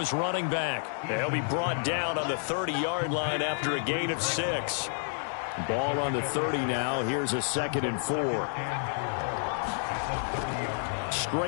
running back. He'll be brought down on the 30-yard line after a gain of 6. Ball on the 30 now. Here's a 2nd and 4.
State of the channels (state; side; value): silent; right; 58 dB below the other